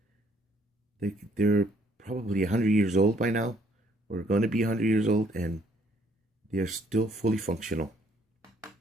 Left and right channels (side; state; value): both; normal; correlation 0.65